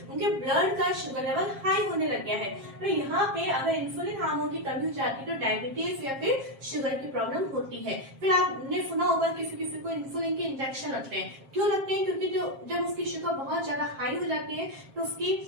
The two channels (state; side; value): late; left; 7.5 ms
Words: उनके ब्लड का शुगर लेवल हाई होने लग गया है। तो यहाँ पे अगर इंसुलिन हार्मोन की कमी हो जाती है तो डायबिटीज या फिर शुगर की प्रॉब्लम होती है। फिर आपने सुना होगा किसी किसी को इंसुलिन के इंजेक्शन लगते हैं, क्यों लगते हैं, क्योंकि जब उसकी शुगर बहुत ज्यादा हाई हो जाती है तो उसकी